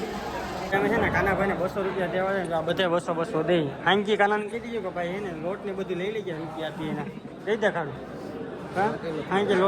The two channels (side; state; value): both; identical; correlation 1.00